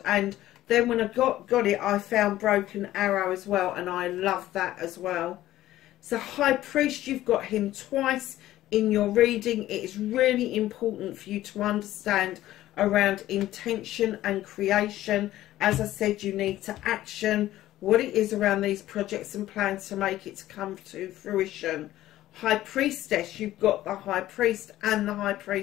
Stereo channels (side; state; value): right; quieter; 14.5 dB